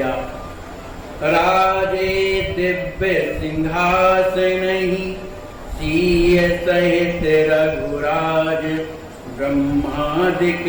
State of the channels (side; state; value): both; identical; correlation 1.00